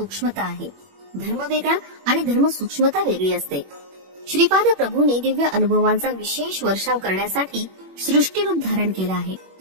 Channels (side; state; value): left; late; 21 ms